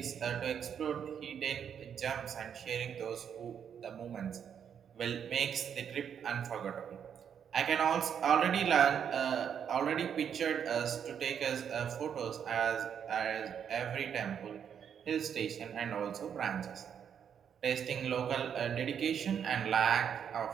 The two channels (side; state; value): left; quieter; 8.1 dB